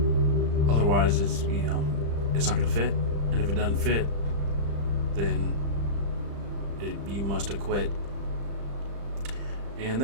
Otherwise, it's not going to fit. And if it doesn't fit, then you must have quit. And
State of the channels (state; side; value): late; left; 35 ms